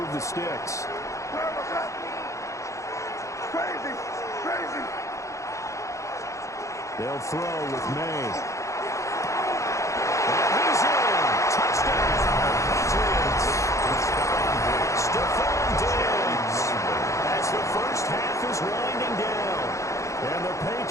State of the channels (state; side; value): late; right; 0.15 ms